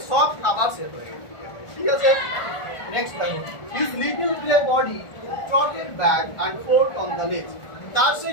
সব খাবার শেষ হয়ে গেছে, ঠিক আছে। নেক্সট দেখো his little grey body trotted back and forth on the ledge. তার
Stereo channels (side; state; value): right; late; 1.4 ms